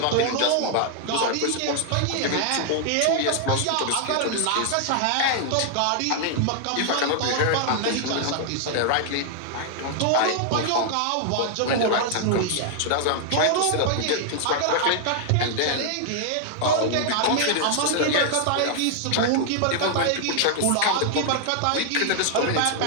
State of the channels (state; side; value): different; both; correlation 0.00